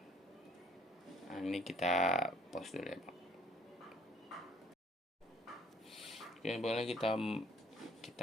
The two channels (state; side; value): normal; both; correlation 0.59